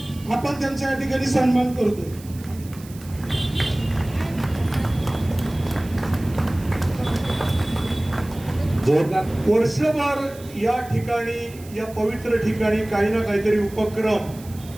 आपण त्यांच्या या ठिकाणी सन्मान करतोय। वर्षभर या ठिकाणी, या पवित्र ठिकाणी काही ना काहीतरी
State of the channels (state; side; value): noise; right; hiss, 21 dB below the sound